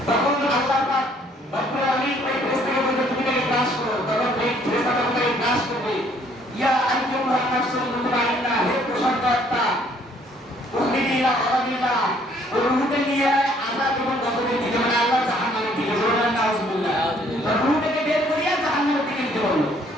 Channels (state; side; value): normal; both; correlation 0.63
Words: তখন আল্লাহ পাক রব্বুল আলামিন ওই ফেরেশতাকে বলবে, তুমি তাকে গ্রাস করো। তখন ওই ফেরেশতাটা তাকে গ্রাস করবে। ইয়া আইয়ুহান নাফসুল মুতমাইন্নাহ, হে প্রশান্ত আত্মা, উখরিজি ইলা আযাবিল্লাহ, রূহকে নিয়ে আযাব এবং গজবের দিকে, মানে আল্লাহ জাহান্নামের দিকে, বলেন নাউজুবিল্লাহ। রূহটাকে বের করিয়া জাহান্নামের দিকে নিতে বলল।